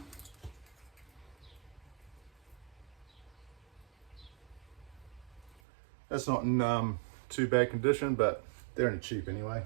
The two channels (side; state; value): left; drops out; at 5.6 s